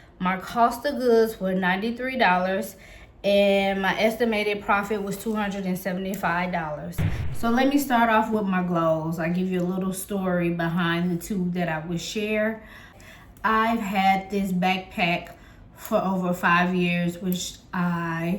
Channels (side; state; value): both; identical; correlation 1.00